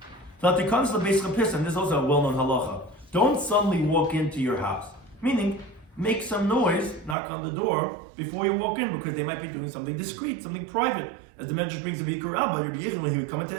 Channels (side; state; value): left; drops out; at 7.2 s